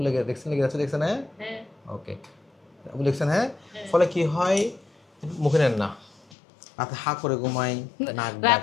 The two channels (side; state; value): right; drops out; at 6.2 s